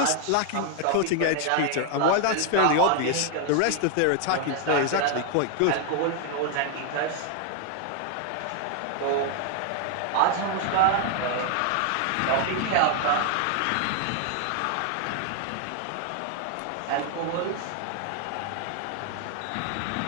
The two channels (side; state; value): both; different; correlation 0.00